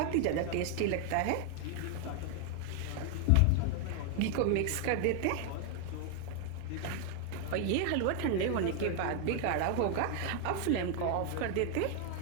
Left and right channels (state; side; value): different; both; correlation 0.00